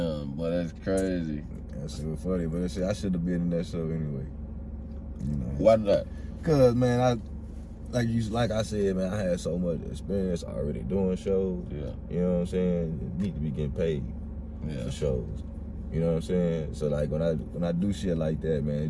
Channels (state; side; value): identical; both; correlation 1.00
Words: boy, that's crazy. That shit was funny, but that shit, I should have been in that show anyway. You know. Why not? Cause man, like I said, man, I had so much experience already doing shows. Yeah. You know what I'm saying? You need to be getting paid for shows. You know what I'm saying? So like when I do shit like that, man,